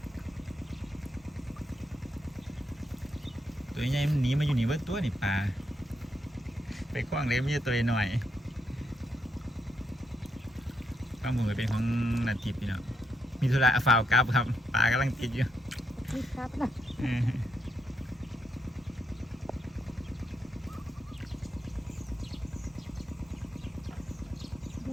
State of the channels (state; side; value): normal; both; correlation 0.80